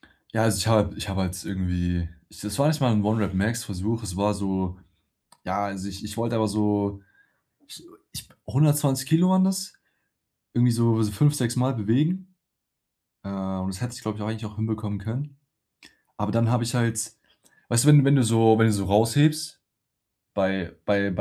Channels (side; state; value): both; identical; correlation 1.00